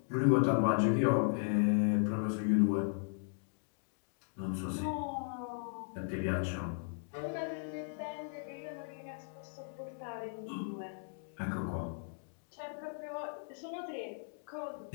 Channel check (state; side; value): silent; right; digital silence